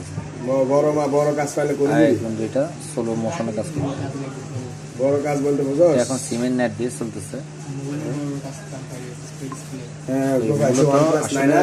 বড় কাজ পাইলে এখন যেটা স্লো মোশনে কাজ করবে, বড় কাজ বলতে বুঝো এখন সিমেন্ট নেট দিয়ে চলতেছে।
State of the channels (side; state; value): both; identical; correlation 1.00